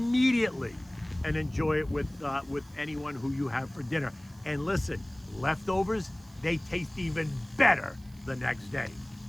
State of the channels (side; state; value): right; noise; hiss, 28 dB below the sound